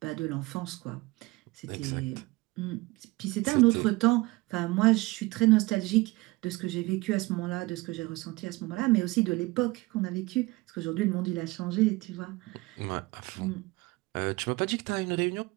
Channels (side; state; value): left; quieter; 22.4 dB